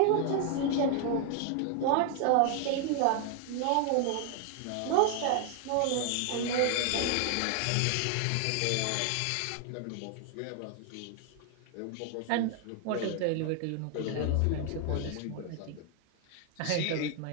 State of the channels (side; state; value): both; different; correlation 0.00